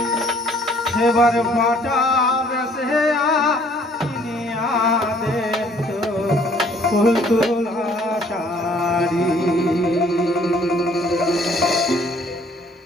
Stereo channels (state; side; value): normal; both; correlation 0.59